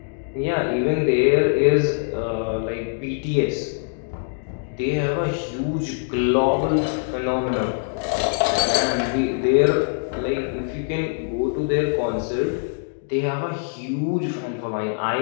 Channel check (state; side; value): silent; right; digital silence